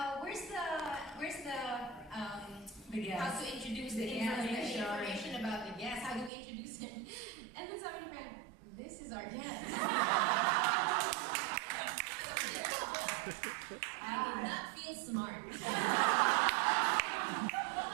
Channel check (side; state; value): left; drops out; at 6.3 s